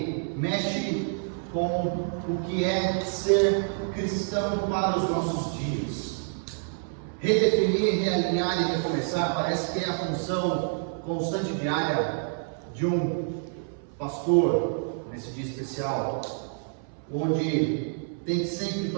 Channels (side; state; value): left; silent; 60 dB below the other